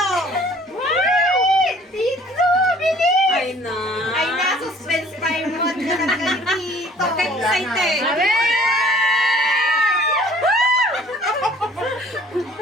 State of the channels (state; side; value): normal; both; correlation 0.53